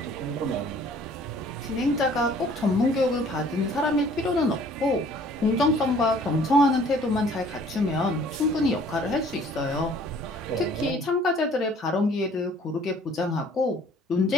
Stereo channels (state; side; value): normal; both; correlation 0.55